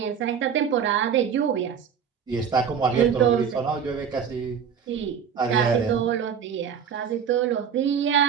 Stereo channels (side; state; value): left; quieter; 7.4 dB